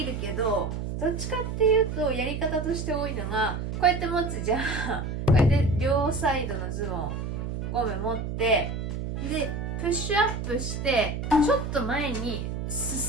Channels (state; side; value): noise; right; hum, 4 dB below the sound